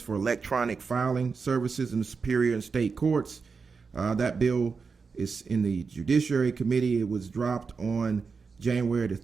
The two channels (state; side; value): quieter; left; 5.0 dB